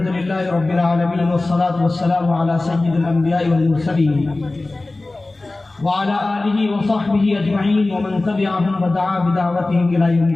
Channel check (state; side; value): quieter; right; 3.0 dB